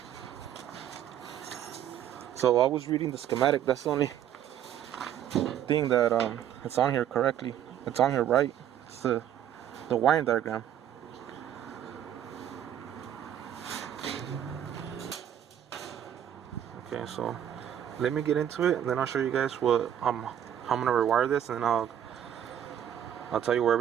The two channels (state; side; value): quieter; left; 10.2 dB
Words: So I was reading the schematic. That's the only thing that it's on here correctly. It's on here right. It's the wiring diagram. Okay, so let me get into it, and then I'll show you guys how I'm gonna rewire this, and then I'll tell you where